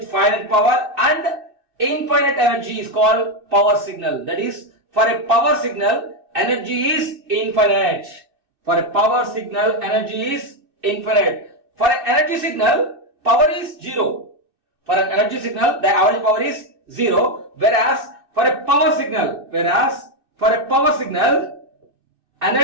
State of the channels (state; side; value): late; left; 2.6 ms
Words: finite power and infinite energy is called power signal. That is, for a power signal, energy is infinite. For a power signal, energy is infinite. For an energy signal, power is 0. For an energy signal, the average power is 0. Whereas for a power signal,